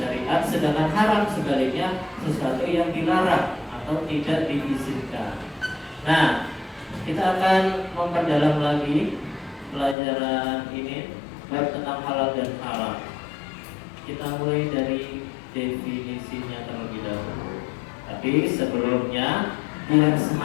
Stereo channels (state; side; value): drops out; right; at 10.0 s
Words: sedangkan haram sebaliknya sesuatu yang dilarang atau tidak diizinkan. Nah, kita akan memperdalam lagi pelajaran ini bab tentang halal dan haram. Kita mulai dari definisinya terlebih dahulu. Tapi sebelumnya biar